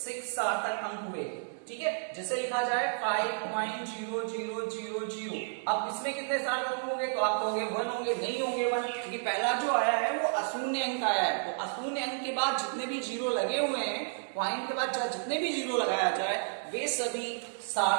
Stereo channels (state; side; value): silent; left; digital silence